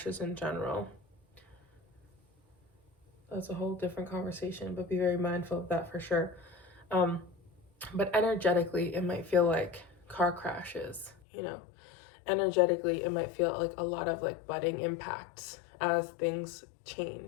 in general. That's a whole different conversation, but be very mindful of that for sure. But energetically, it might feel like car crashes, you know. Energetically, it might feel like a lot of like budding impacts as things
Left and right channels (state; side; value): drops out; right; at 11.2 s